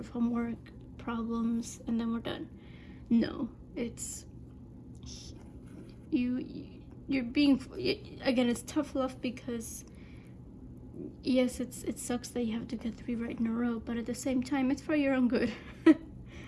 homework problems and then we're done. No, it's you're being, again, it's tough love, because yes, it sucks that you have to get 3 right in a row, but at the same time, it's for your own good.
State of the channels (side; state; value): both; identical; correlation 1.00